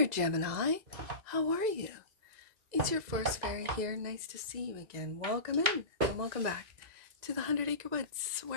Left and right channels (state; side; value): late; left; 2.0 ms